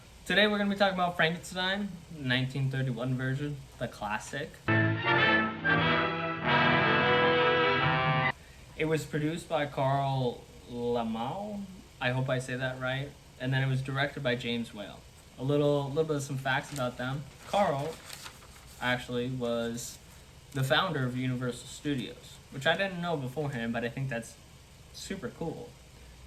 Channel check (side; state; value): both; identical; correlation 1.00